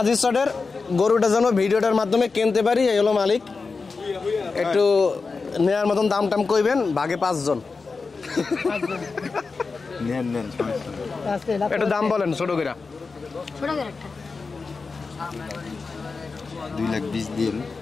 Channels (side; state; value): right; quieter; 4.4 dB